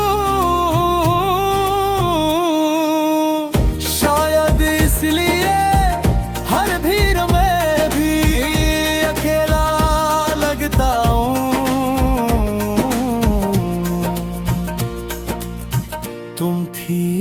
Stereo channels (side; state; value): both; identical; correlation 1.00